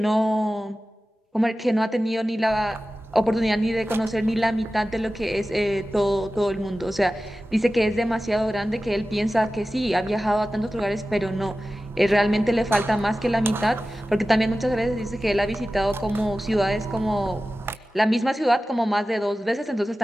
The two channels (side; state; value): both; normal; correlation 0.95